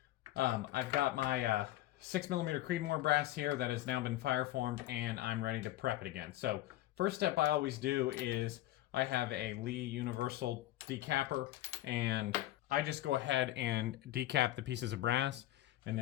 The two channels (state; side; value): quieter; right; 15.3 dB